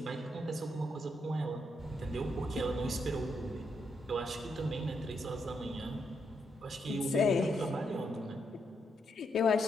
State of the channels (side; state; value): both; normal; correlation 0.79